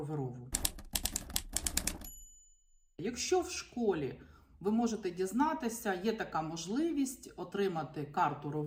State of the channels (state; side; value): identical; both; correlation 1.00